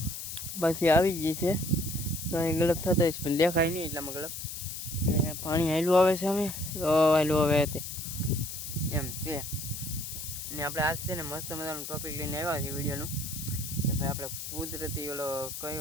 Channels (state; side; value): noise; left; hiss, 7 dB below the sound